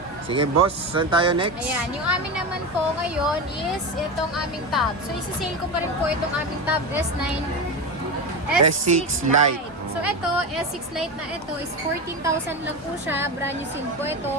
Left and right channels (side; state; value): both; normal; correlation 0.20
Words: Sige boss, saan tayo next? Ayan, yung amin naman po ngayon is itong aming tab. So isi-sale ko pa rin po itong aming tab S9 S6 Lite. So ito, S6 Lite na ito is 14,000 lang po siya. Brand new seal po ito.